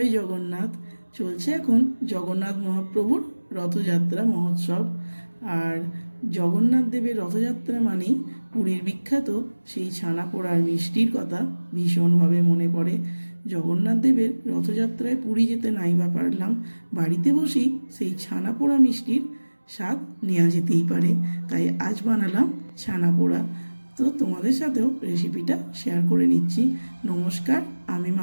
জগন্নাথ। চলছে এখন জগন্নাথ মহাপ্রভুর রথযাত্রা মহোৎসব। আর জগন্নাথ দেবের রথযাত্রা মানেই পুরীর বিখ্যাত সেই ছানা পোড়ার মিষ্টির কথা ভীষণভাবে মনে পড়ে। জগন্নাথ দেবের রথযাত্রায় পুরী যেতে নাই বা পারলাম, বাড়িতে বসেই সেই ছানা পোড়া মিষ্টির স্বাদ নেওয়া যেতেই পারে। তাই আজ বানালাম ছানা পোড়া। তো তোমাদের সাথেও রেসিপিটা শেয়ার করে নিচ্ছি। নমস্কার, আমি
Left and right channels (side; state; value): both; inverted; correlation -1.00